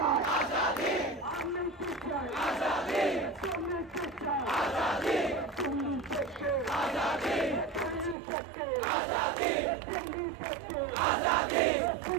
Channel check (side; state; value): left; drops out; at 8.2 s